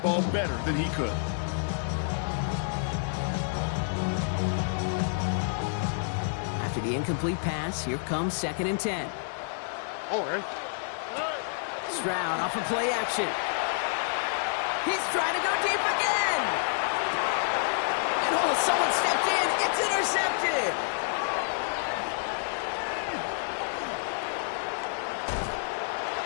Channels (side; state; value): right; silent; digital silence